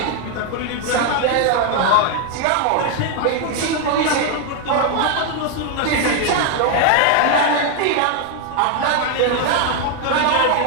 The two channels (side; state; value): both; different; correlation 0.01